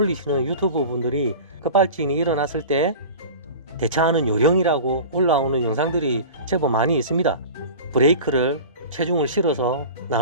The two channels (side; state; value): both; inverted; correlation -0.35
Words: 유튜브 분들이 급발진이 일어났을 때 대처하는 요령이라고 올라오는 영상들이 제법 많이 있습니다. 브레이크를 체중을 실어서